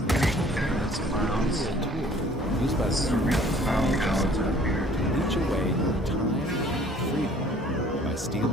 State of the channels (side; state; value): both; normal; correlation 0.55